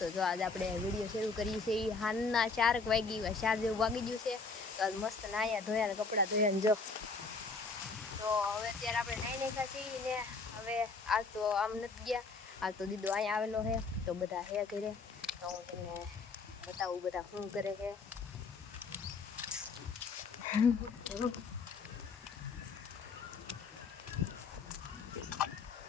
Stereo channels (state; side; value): quieter; right; 4.3 dB